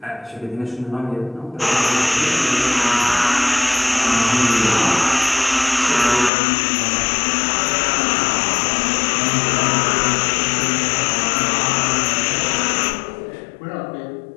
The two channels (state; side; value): drops out; right; at 6.3 s